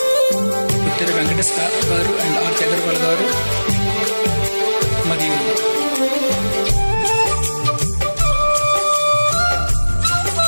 ఉత్తర వెంకటేష్ గారు అండ్ ఆర్ అగర్వాల్ గారు మరియు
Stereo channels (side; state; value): both; inverted; correlation -1.00